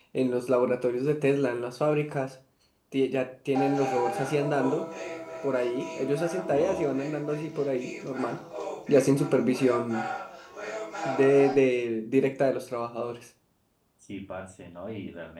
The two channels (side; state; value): both; identical; correlation 1.00